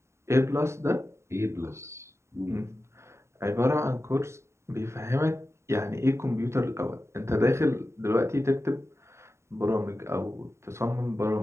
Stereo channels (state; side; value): late; left; 0.13 ms